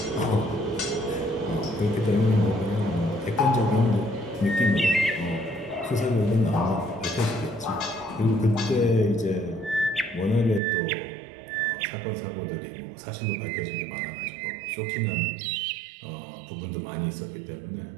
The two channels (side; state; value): left; drops out; at 10.6 s